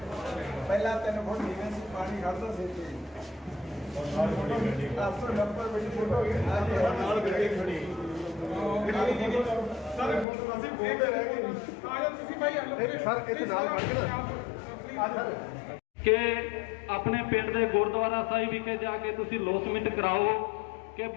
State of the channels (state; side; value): drops out; right; at 10.2 s